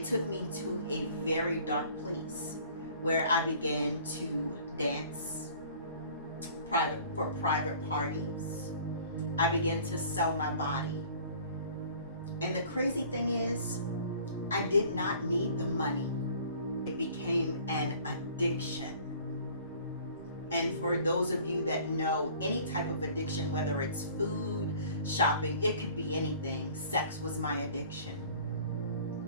took me to a very dark place where I began to dance private parties. I began to sell my body. And the crazy thing is, I did not need the money. It became an addiction. And for those of you that know any type of addiction, whether it's food, shopping, it could be anything. Sex was my addiction.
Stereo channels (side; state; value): both; inverted; correlation -0.50